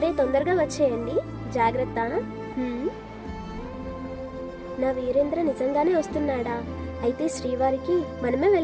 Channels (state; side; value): identical; both; correlation 1.00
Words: తొందరగా వచ్చేయండి. జాగ్రత్త. నా వీరేంద్ర నిజంగానే వస్తున్నాడా? అయితే శ్రీవారికి మనమే